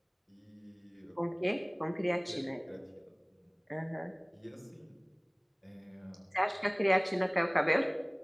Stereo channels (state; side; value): identical; both; correlation 1.00